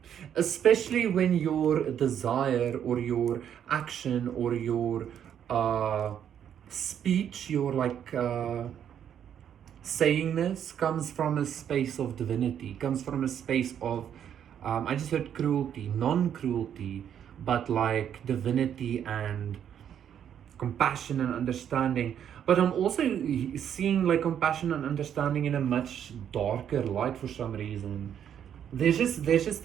Especially when your desire or your action or your uh, speech, your saying this comes from a space of divinity, comes from a space of, I just heard cruelty, non cruelty, but like divinity and compassion and understanding. But I'm also seeing like compassion and understanding in a much darker light for some reason. There's just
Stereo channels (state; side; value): quieter; left; 9.2 dB